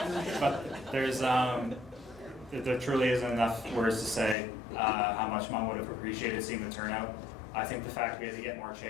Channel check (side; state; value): right; drops out; at 4.4 s